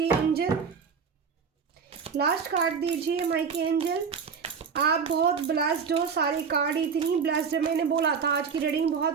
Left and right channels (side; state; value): left; quieter; 6.1 dB